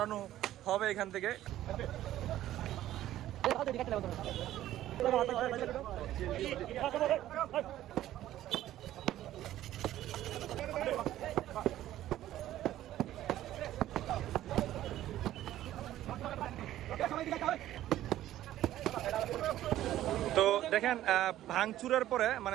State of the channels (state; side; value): quieter; left; 13.5 dB